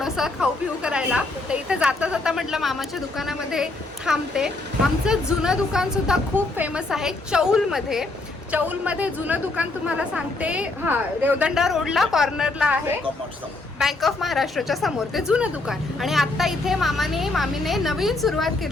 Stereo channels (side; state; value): right; quieter; 3.1 dB